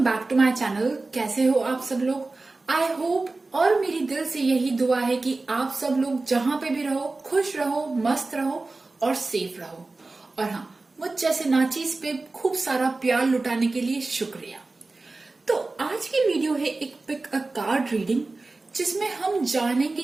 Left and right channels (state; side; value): quieter; left; 3.4 dB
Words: back to my channel. कैसे हो आप सब लोग? आई होप और मेरी दिल से यही दुआ है कि आप सब लोग जहां पे भी रहो खुश रहो, मस्त रहो और सेफ रहो। और हाँ, मुझ जैसे नाचीज पे खूब सारा प्यार लुटाने के लिए शुक्रिया। तो आज की वीडियो है एक पिक अ कार्ड रीडिंग, जिसमें हम